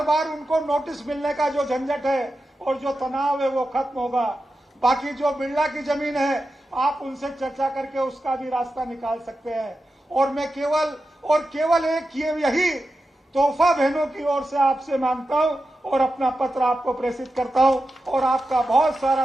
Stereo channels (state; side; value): normal; both; correlation 0.91